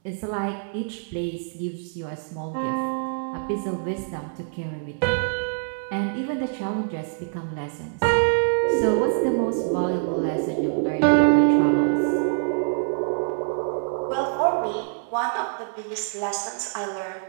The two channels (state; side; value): silent; left; 62 dB below the other